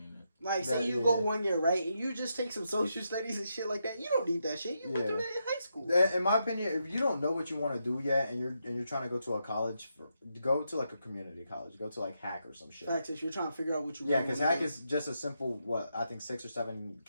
it. like say you go 1 year, right, and you just take some social studies and shit like that, you don't need that shit. You went through that in high school. In my opinion, if you don't know what you want to do yet, and you're trying to go to a college, go to like a community college. Go to like Hack or some shit. Facts, if you're trying to figure out what you Yeah, because Hack is just a simple I think $6 or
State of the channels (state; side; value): inverted; both; correlation -0.82